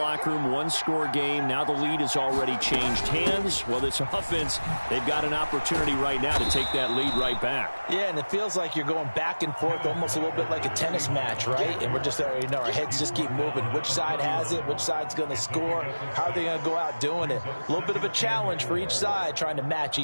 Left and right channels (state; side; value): inverted; both; correlation -1.00